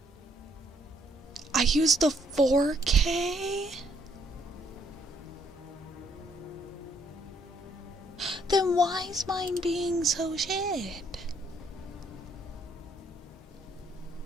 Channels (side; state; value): both; normal; correlation 0.68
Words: I used the 4K? Then why is mine being so shit?